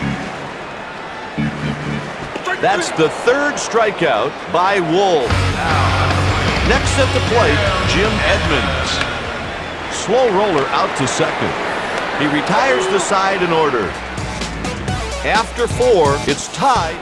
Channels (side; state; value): both; identical; correlation 1.00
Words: That's the third strikeout by Wolf. Next at the plate, Jim Edmonds. Slow roller out to second. He retires the side in order. After 4, it's tied.